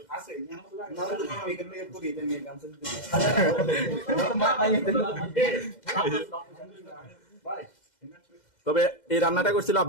তবে এই রান্নাটা করছিল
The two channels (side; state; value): right; late; 2.0 ms